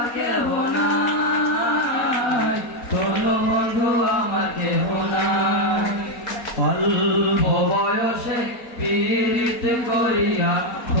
কেহ নাই, ধর বন্ধু আমার কেহ নাই। অল্প বয়সে পীড়িত করিয়া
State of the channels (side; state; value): right; late; 4.3 ms